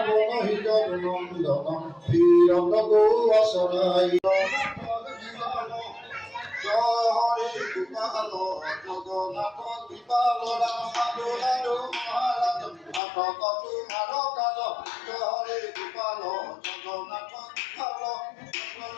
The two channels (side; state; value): right; drops out; at 13.0 s